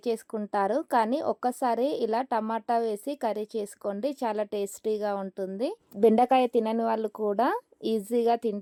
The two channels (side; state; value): both; identical; correlation 1.00